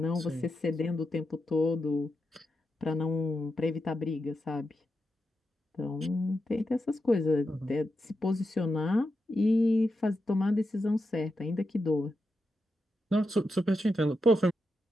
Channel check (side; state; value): both; normal; correlation 0.87